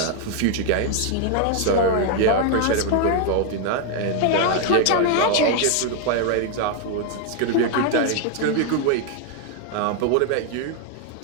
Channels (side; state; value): both; different; correlation 0.00